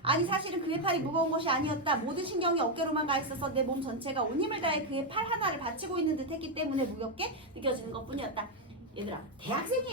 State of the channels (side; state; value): both; normal; correlation 0.04